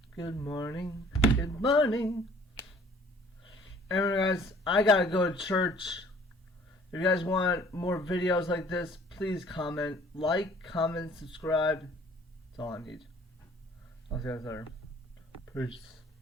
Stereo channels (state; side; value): normal; both; correlation 0.54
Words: Good morning. Good morning. Anyway, guys, I gotta go to church. If you guys want more videos like this, please comment. Like, comment, subscribe. That's all I need. I'll see you guys later. Peace.